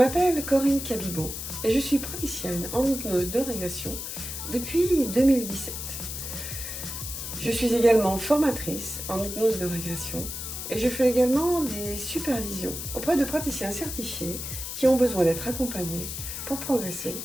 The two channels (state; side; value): noise; left; hiss, 6 dB below the sound